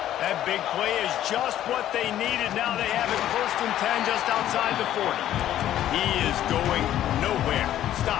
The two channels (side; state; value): right; quieter; 12.1 dB